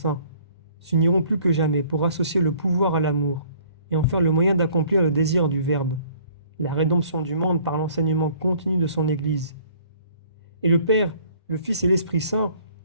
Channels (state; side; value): inverted; both; correlation -0.56